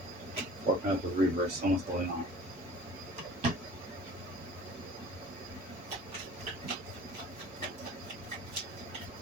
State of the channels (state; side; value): normal; both; correlation 0.45